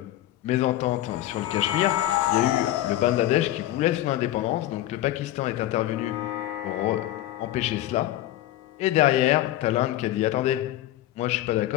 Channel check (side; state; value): right; quieter; 14.2 dB